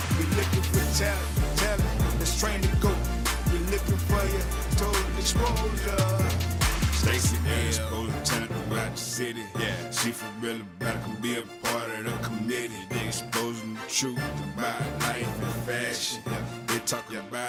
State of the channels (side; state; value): both; identical; correlation 1.00